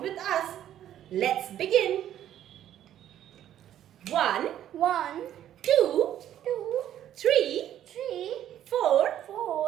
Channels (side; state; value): left; quieter; 11.4 dB